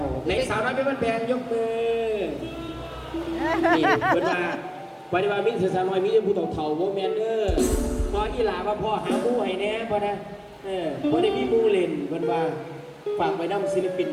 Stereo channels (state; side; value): identical; both; correlation 1.00